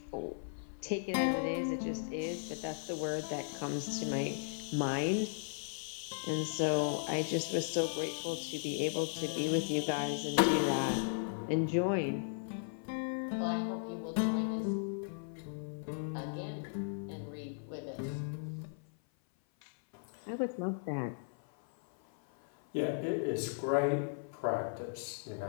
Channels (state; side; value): silent; right; 53 dB below the other